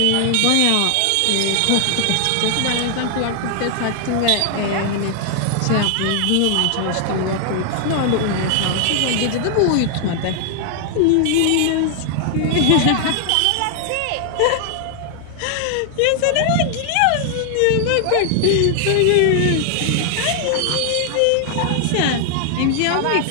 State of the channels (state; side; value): different; both; correlation 0.00